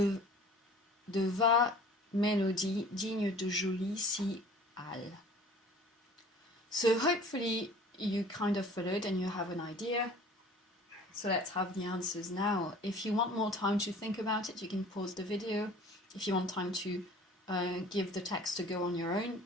vagues mélodies dignes de jolies cigales. So hopefully you kind of followed and you have an idea. So let's have the answers now. If you want more time to think about it, you can pause the video. If you want time to give the text a go on your own,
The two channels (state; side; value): normal; both; correlation 0.47